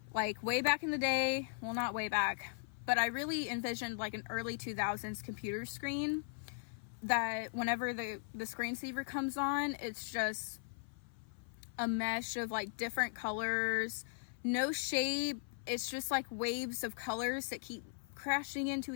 Like way back in the day, well, not way back, but I really envisioned like an early 2000s computer screen that whenever the screensaver comes on, it's just a mesh of like different colors, no shape. It's just like waves of colors that keep crashing into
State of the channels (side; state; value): right; silent; 52 dB below the other